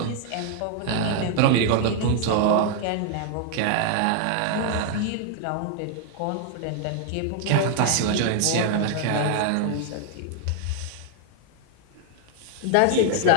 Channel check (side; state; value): both; different; correlation 0.00